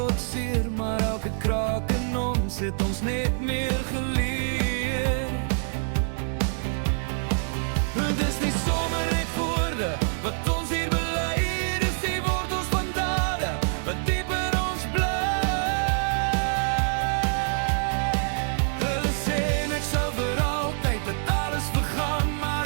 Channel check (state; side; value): silent; left; 61 dB below the other